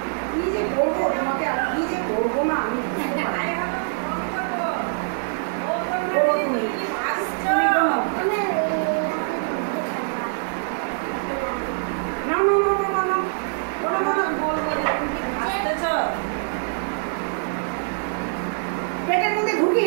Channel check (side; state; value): left; silent; digital silence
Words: কি যে করবো তোমাকে, আর কি যে করবো না আমি বুঝতে পারি না। করো তুমি, তুমি করো। না না না না না না, করো না না, পেটের মধ্যে